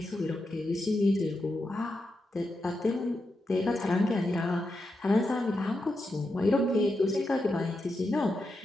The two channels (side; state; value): both; normal; correlation 0.87